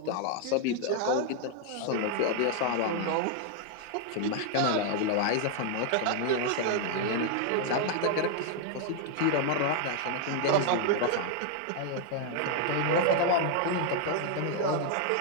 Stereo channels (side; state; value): both; different; correlation 0.00